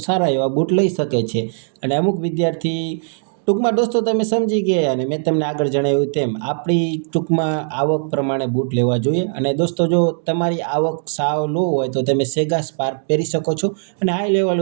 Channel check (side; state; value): left; silent; 63 dB below the other